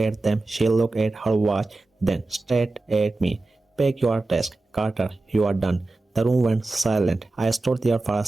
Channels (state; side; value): quieter; left; 3.1 dB